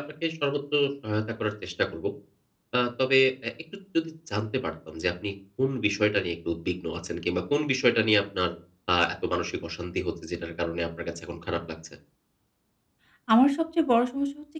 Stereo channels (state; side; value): identical; both; correlation 1.00